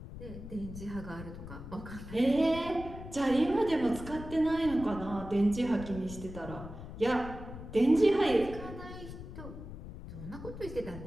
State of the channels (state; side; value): noise; left; rumble, 11 dB below the sound